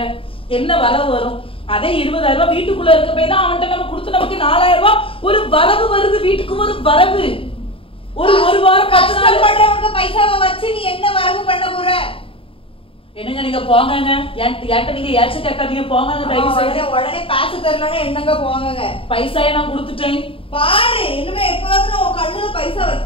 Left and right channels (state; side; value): late; right; 0.26 ms